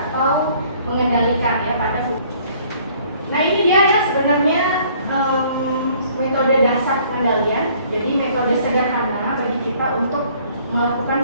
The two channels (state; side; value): inverted; both; correlation -0.58